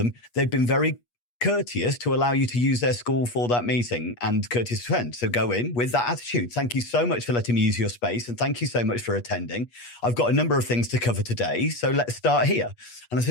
They've been very courteous to allow you to use their school for that meeting, and courteous to attend. So go in with that attitude. Thank you so much for letting me use your space, and thank you so much for attending. I've got a number of things to cover today, so let's start here. And I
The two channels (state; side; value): late; right; 8.4 ms